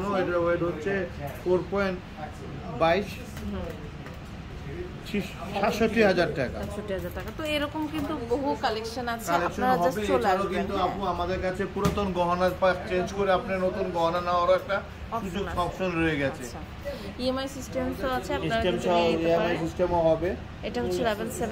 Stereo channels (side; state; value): both; identical; correlation 1.00